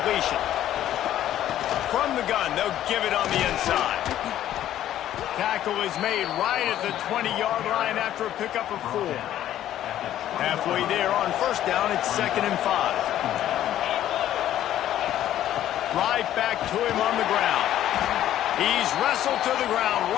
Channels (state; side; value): quieter; right; 12.1 dB